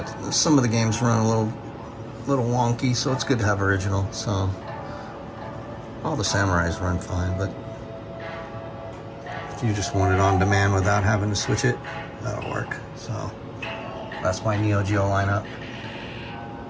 some of the games run a little wonky, so it's good to have original. So all the Samurais run fine, but if you just want it on demand without having to switch it, that'll work. So that's my Neo Geo lineup.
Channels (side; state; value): both; identical; correlation 1.00